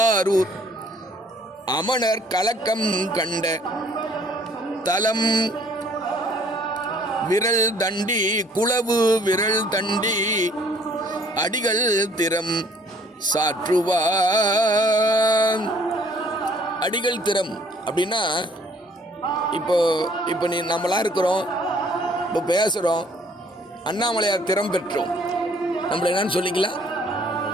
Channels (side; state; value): both; normal; correlation 0.59